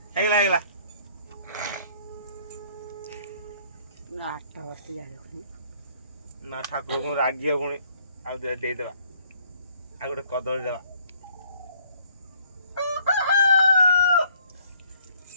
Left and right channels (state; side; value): inverted; both; correlation -0.62